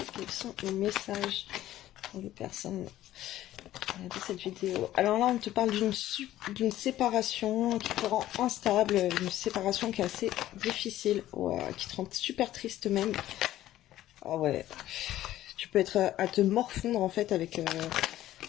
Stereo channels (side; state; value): right; quieter; 13.9 dB